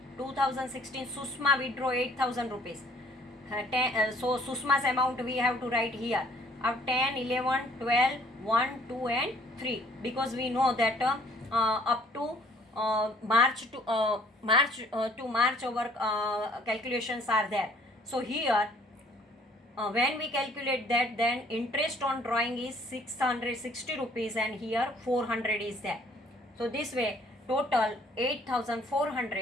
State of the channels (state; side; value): normal; both; correlation 0.59